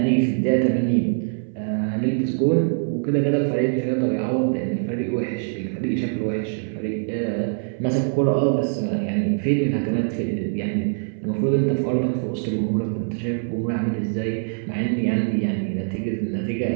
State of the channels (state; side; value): silent; left; 62 dB below the other